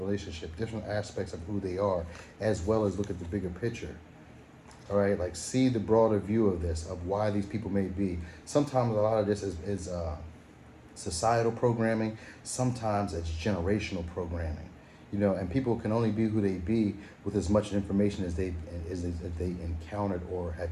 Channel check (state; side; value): identical; both; correlation 1.00